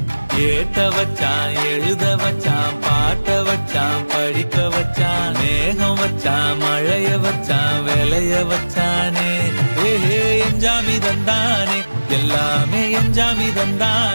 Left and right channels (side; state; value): both; inverted; correlation -1.00